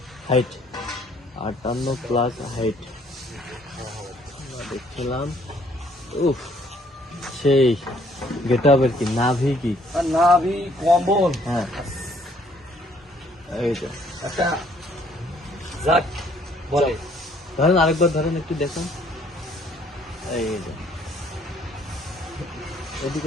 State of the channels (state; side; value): normal; both; correlation 0.63